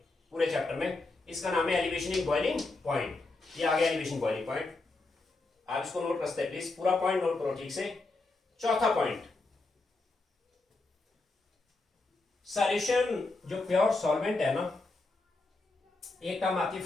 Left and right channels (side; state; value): right; quieter; 3.3 dB